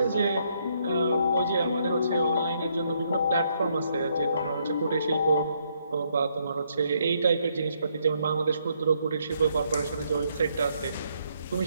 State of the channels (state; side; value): inverted; both; correlation -0.72